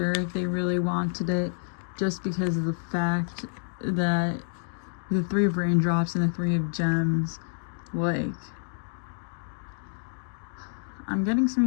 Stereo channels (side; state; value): right; silent; digital silence